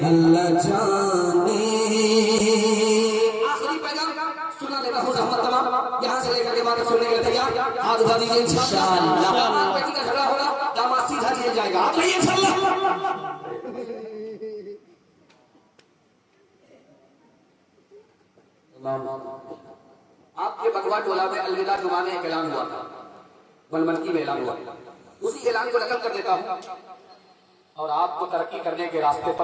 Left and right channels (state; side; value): identical; both; correlation 1.00